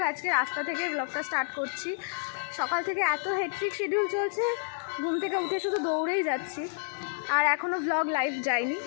আজকে রাস্তা থেকে ব্লগটা স্টার্ট করছি। সকাল থেকে এত হেক্টিক শিডিউল চলছে, ঘুম থেকে উঠে শুধু দৌড়েই যাচ্ছি। আর এখনও ব্লগ লাইভ যায়নি।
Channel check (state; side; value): silent; right; digital silence